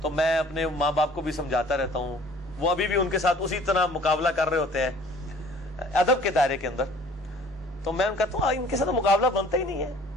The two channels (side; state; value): both; normal; correlation 0.52